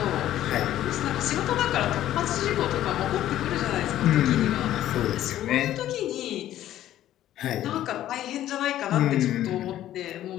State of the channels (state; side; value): quieter; right; 12.8 dB